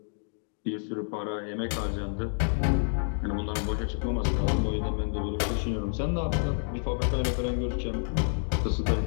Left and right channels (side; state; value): right; silent; 59 dB below the other